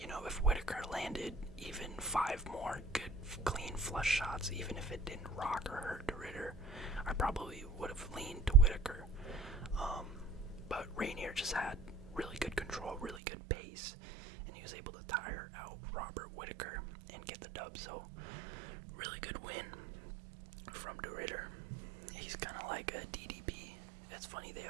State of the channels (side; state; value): left; drops out; at 13.2 s